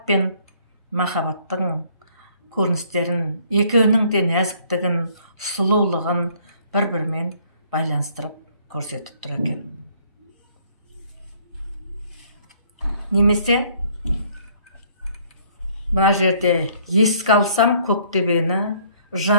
пен махаббаттың көріністерін, екеуінің де нәзіктігін, сұлулығын бір-бірімен байланыстырып көрсетіп тұр екен. Немесе мына жерде еске алсам көктөбені,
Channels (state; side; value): inverted; both; correlation -0.61